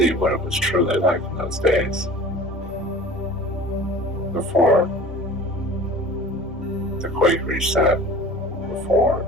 what it was truly like in those days. Before the quake reset, before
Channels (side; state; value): both; normal; correlation 0.41